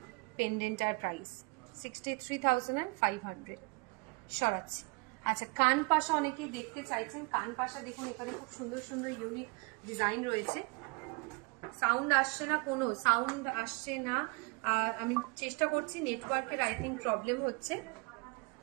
পেন্ডেন্টার প্রাইস। 63,500। সরাচ্ছি। আচ্ছা, কান পাশা অনেকেই দেখতে চাইছেন। কান পাশা দেখুন, এখানে খুব সুন্দর সুন্দর ইউনিক ডিজাইন রয়েছে। সাউন্ড আসছে না, কোনো সাউন্ড আসছে না। আমি চেষ্টা করছি, নেটওয়ার্কের আই থিঙ্ক প্রবলেম হচ্ছে,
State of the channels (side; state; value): left; quieter; 29.2 dB